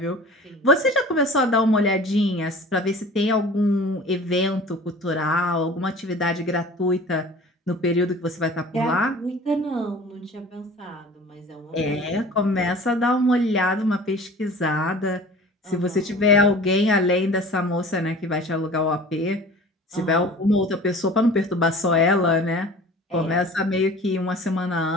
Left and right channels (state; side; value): normal; both; correlation 0.43